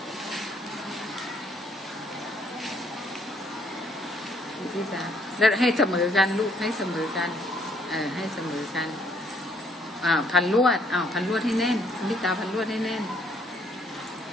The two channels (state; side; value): normal; both; correlation 0.66